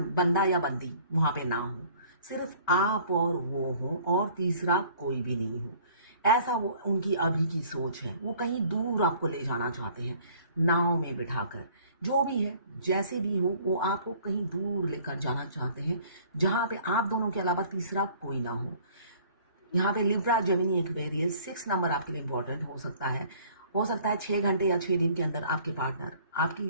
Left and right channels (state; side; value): inverted; both; correlation -0.54